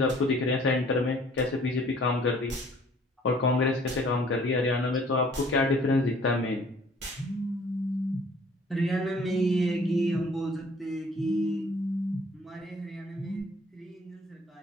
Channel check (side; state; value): both; normal; correlation 0.56